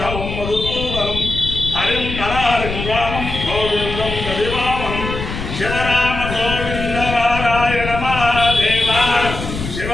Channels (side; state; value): left; noise; rumble, 6 dB below the sound